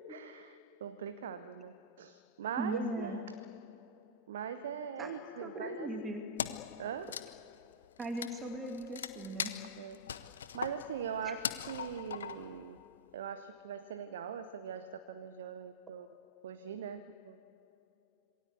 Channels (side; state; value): both; normal; correlation -0.18